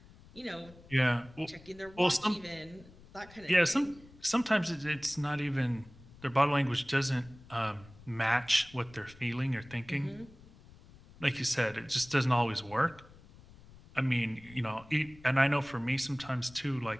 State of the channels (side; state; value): left; noise; rumble, 22 dB below the sound